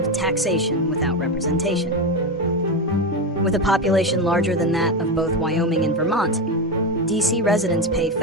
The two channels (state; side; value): normal; both; correlation 0.15